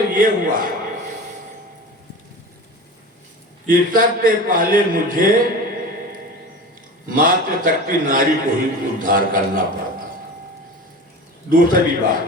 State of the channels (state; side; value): normal; both; correlation 0.33